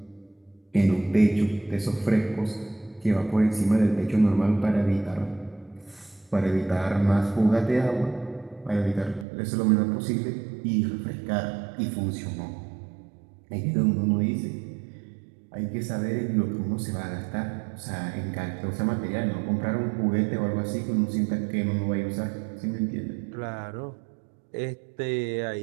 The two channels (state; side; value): drops out; left; at 9.2 s